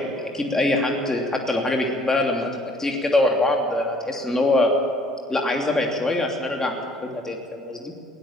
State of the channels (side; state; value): both; normal; correlation 0.59